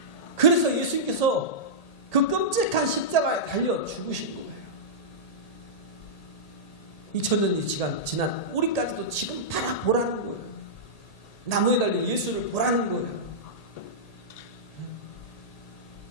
그래서 예수님께서 그 끔찍한 십자가에 달려 죽으신 거예요. 2000년이 지난 우리까지도 지금 바라보라는 거예요. 나무에 달린 예수를 보라는 거예요.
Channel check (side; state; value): right; late; 1.8 ms